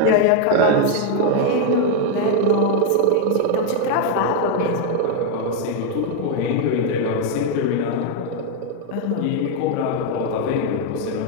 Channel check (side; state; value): both; different; correlation 0.01